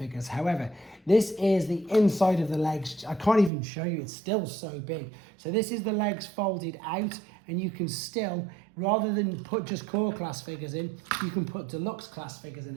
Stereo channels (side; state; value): left; drops out; at 3.5 s